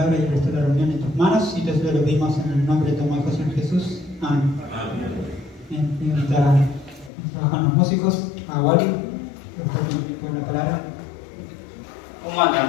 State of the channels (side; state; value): right; drops out; at 7.1 s